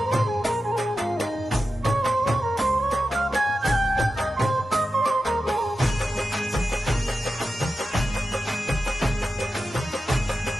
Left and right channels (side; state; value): both; normal; correlation 0.91